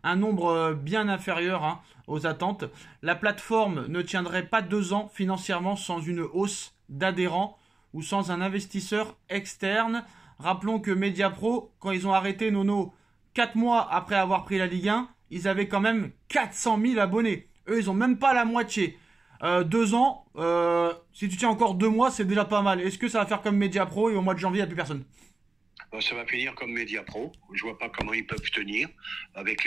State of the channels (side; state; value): left; quieter; 3.6 dB